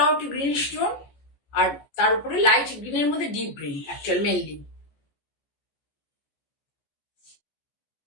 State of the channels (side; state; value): right; late; 14 ms